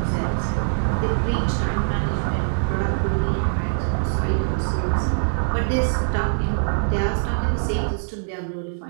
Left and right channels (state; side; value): silent; left; digital silence